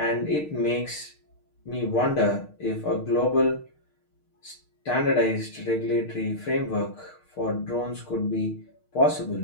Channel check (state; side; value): late; right; 6.5 ms